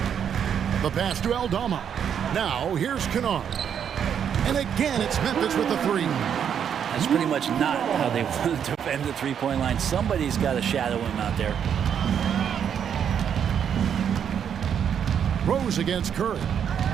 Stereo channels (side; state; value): left; quieter; 8.3 dB